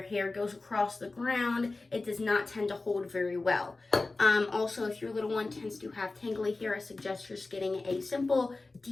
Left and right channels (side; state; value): right; quieter; 3.4 dB